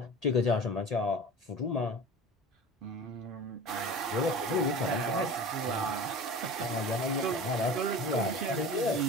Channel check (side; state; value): both; normal; correlation 0.36